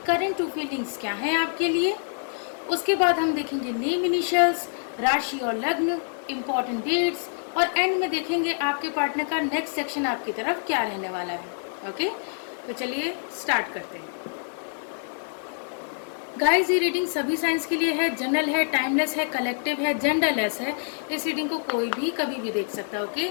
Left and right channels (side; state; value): right; silent; 61 dB below the other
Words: करंट टू फीलिंग्स क्या हैं आपके लिए। उसके बाद हम देखेंगे नेम इनिशियल्स, राशि और लग्न, इम्पोर्टेंट डेट्स और एंड में देखेंगे आपके पार्टनर का नेक्स्ट सेक्शन आपकी तरफ क्या रहने वाला है। ओके, तो चलिए स्टार्ट करते हैं। गाइस, ये रीडिंग सभी साइंस के लिए है, जनरल है, टाइमलेस है, कलेक्टिव है, जेंडरलेस है। इस रीडिंग को कोई भी कभी भी देख सकता है। ओके,